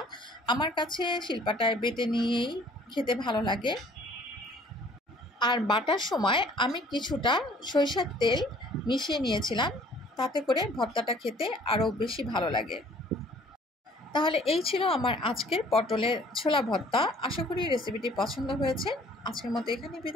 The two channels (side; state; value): both; normal; correlation 0.55